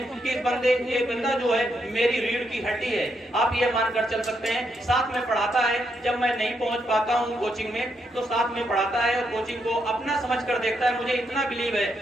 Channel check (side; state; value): both; normal; correlation 0.79